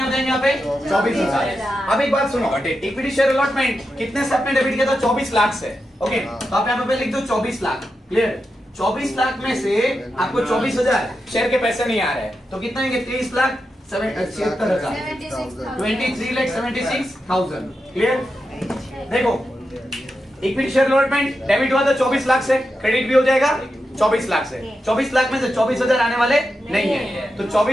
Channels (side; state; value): both; normal; correlation 0.88